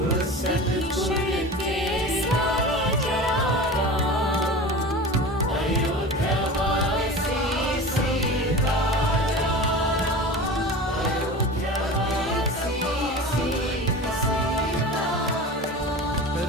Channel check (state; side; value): normal; both; correlation 0.33